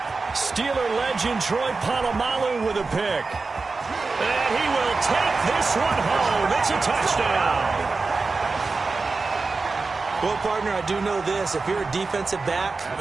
Steeler legend Troy Polamalu with a pick. And he will take this one home. It's a touchdown. Well, partner, I do know this. If you're a defensive back,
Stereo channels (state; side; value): quieter; left; 4.0 dB